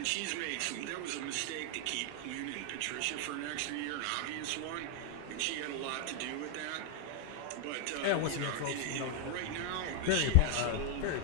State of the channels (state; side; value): different; both; correlation 0.00